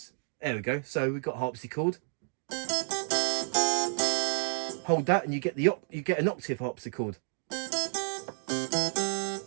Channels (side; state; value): left; silent; digital silence